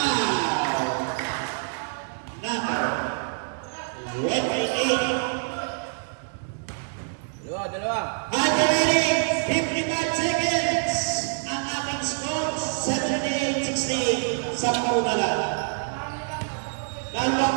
Number 28. Dalawa. Remaining 55 seconds. Ang ating score, 78-68. 10 na lang.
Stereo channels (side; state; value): left; silent; 61 dB below the other